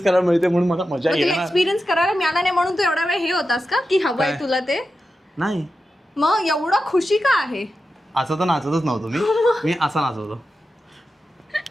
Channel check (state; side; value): normal; both; correlation 0.91